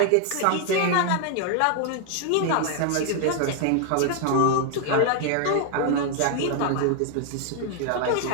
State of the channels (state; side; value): different; both; correlation 0.00